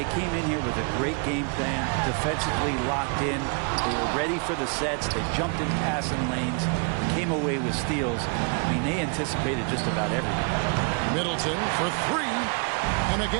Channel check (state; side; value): quieter; left; 37.1 dB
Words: came in here with a great game plan, defensively locked in. They were ready for the sets. They jumped in passing lanes. They came away with steals. I mean, they anticipated just about everything. Middleton for 3. And